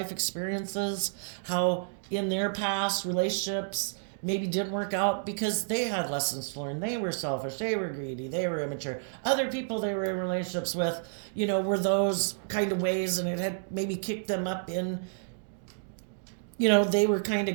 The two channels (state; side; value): silent; left; digital silence